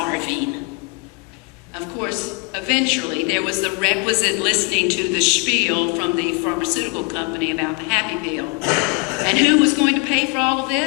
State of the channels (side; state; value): right; quieter; 29.1 dB